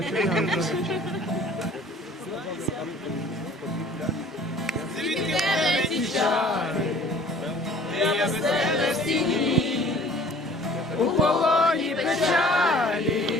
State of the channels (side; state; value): both; normal; correlation 0.50